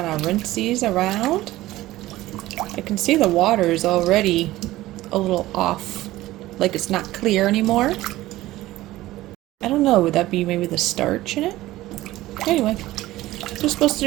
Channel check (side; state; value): left; quieter; 16.7 dB